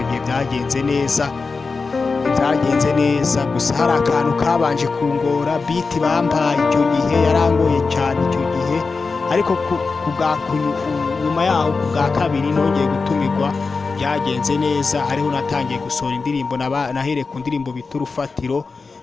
gihe byagenze neza. Gusa hari akantu kabanje kungora, biti bampaye icyo gihe yarangoye cyane icyo gihe, ariko nyuma yaho ku bwa kabiri nongeye gutumirwa, byagenze neza. Hariho natangiye gusohora indirimbo, nahereye ku ndirimbo bita Urufatiro.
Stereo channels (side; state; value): right; quieter; 4.4 dB